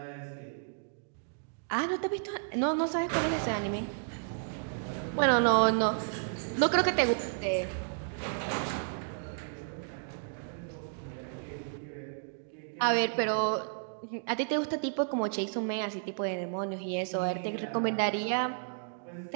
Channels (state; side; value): silent; left; digital silence